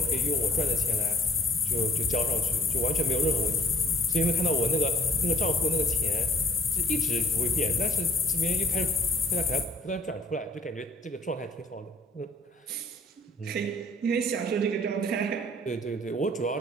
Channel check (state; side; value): normal; both; correlation 0.55